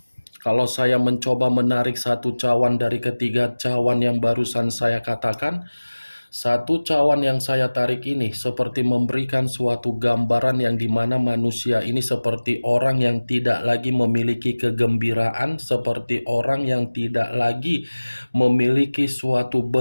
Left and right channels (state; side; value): inverted; both; correlation -1.00